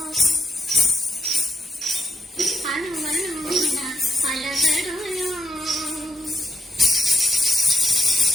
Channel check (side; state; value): both; normal; correlation 0.82